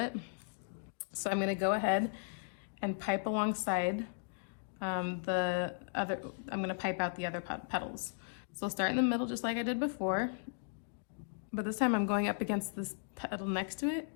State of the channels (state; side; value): silent; right; digital silence